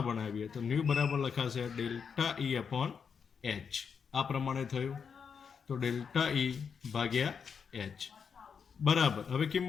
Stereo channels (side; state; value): right; quieter; 6.4 dB